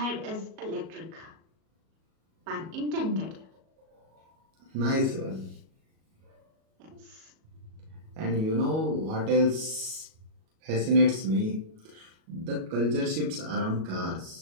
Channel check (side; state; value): left; late; 37 ms